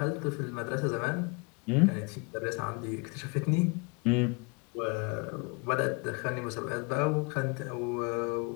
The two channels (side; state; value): right; quieter; 31.5 dB